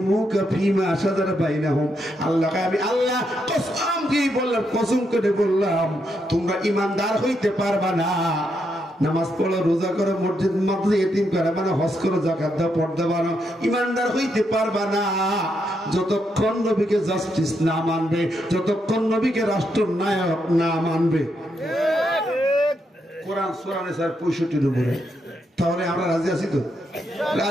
ফীমা শাজারা বাইনাহুম। আল্লাহকে আমি আল্লাহ কসম দিয়ে বললাম, কসম করে বললাম, তোমরা ঈমানদার হইতে পারবা না। নামাজ পড়ো, রোজা করো, মসজিদ মাদ্রাসা ইতিম করো, মানে হজ করো, যাকাত দাও, পর্দা বানো, ঈমানদার হইতে পারবা না যতক্ষণ নবীকে জাস্টিস না মানবে, যতক্ষণ নবীকে রাষ্ট্রনায়ক না মানবে। কোরআন সূরা নিসার 65 নম্বরে। তাহলে আমরা রাজি আছি তো?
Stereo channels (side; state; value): both; normal; correlation 0.80